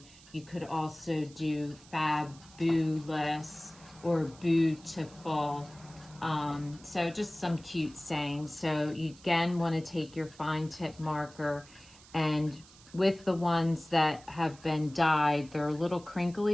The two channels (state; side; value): noise; right; hiss, 23 dB below the sound